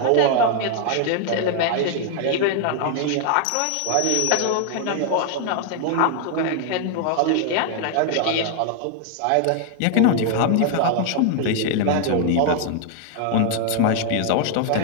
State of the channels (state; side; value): different; both; correlation 0.00